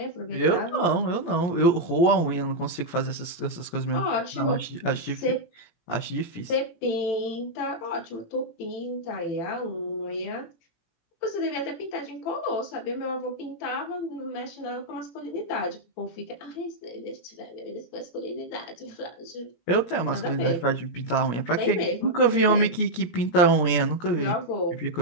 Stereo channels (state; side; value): late; right; 18 ms